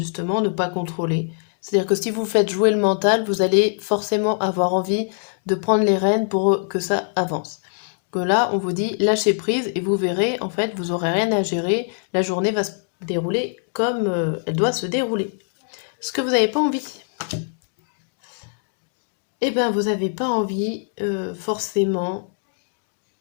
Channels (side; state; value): right; silent; 64 dB below the other